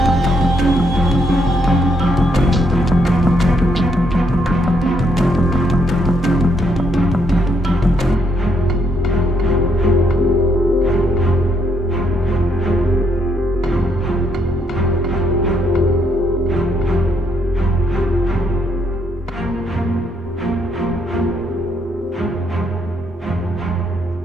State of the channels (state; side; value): normal; both; correlation 0.74